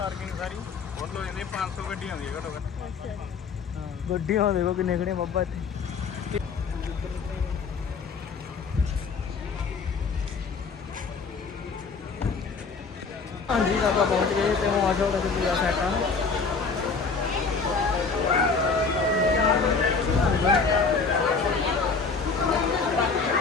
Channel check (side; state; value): right; quieter; 4.9 dB